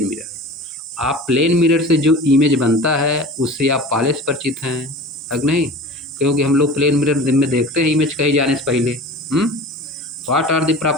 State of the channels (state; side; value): normal; both; correlation 0.37